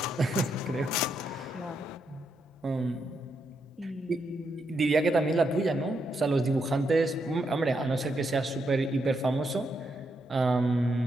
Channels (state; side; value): normal; both; correlation 0.80